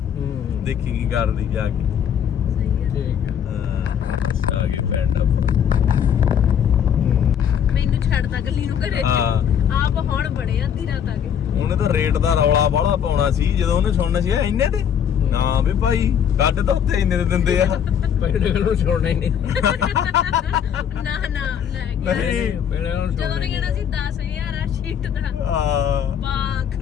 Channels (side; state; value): right; quieter; 8.5 dB